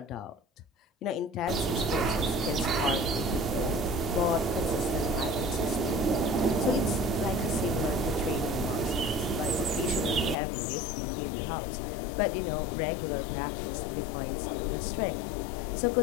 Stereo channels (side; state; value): right; drops out; at 10.4 s